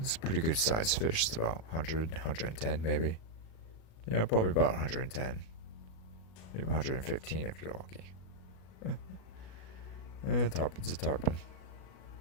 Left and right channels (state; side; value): late; right; 37 ms